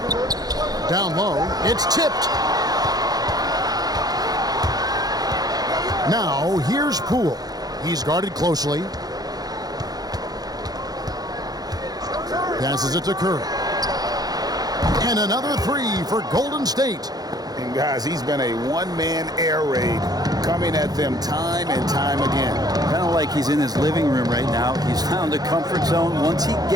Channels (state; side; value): late; left; 0.19 ms